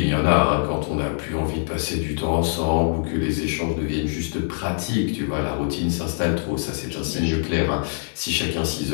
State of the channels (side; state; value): right; silent; 63 dB below the other